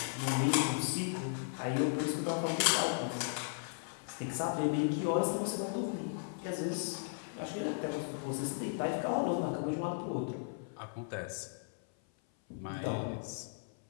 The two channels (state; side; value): silent; right; 54 dB below the other